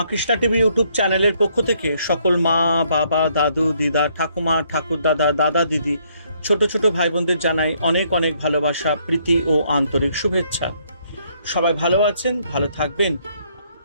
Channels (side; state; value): both; inverted; correlation -0.69